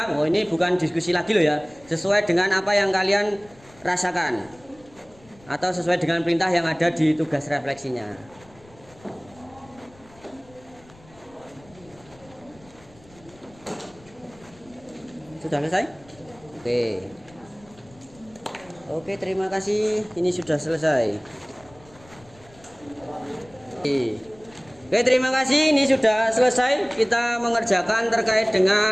Oh, ini bukan diskusi lagi loh ya. Sesuai dengan apa yang kalian rasakan atau sesuai dengan perintah yang ada di tugas refleksinya. Sudah selesai? Oke, terima kasih. Ini sudah selesai. Oke, terima kasih. Ini sudah selesai. Kita mengerjakan terkait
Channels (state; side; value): noise; left; rumble, 26 dB below the sound